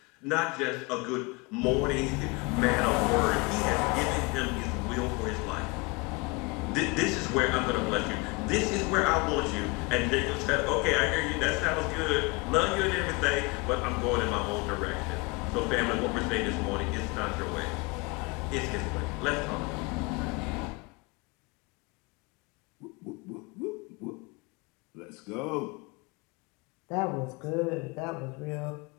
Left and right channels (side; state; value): right; quieter; 27.1 dB